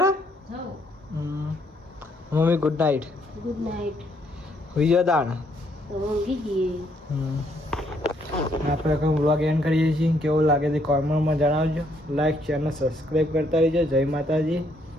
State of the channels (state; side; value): normal; both; correlation 0.70